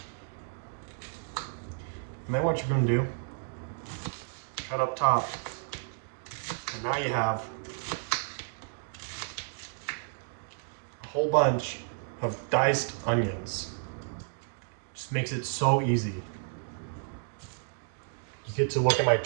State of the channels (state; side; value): silent; left; digital silence